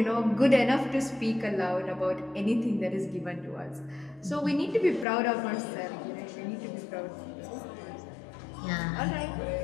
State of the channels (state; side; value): drops out; right; at 5.1 s